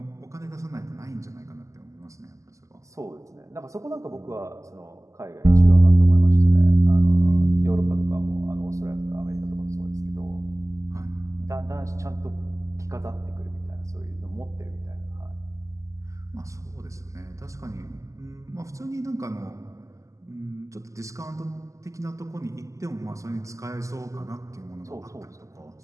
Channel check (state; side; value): late; left; 0.16 ms